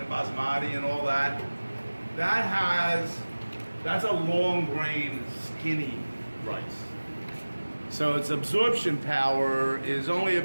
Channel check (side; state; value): both; inverted; correlation -1.00